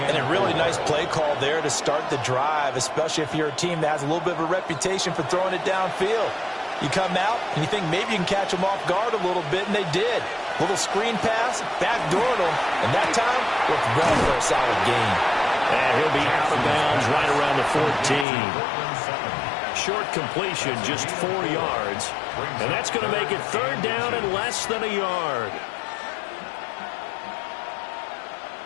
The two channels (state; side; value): drops out; right; at 18.2 s